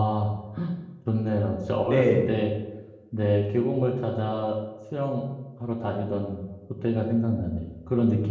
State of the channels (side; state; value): both; identical; correlation 1.00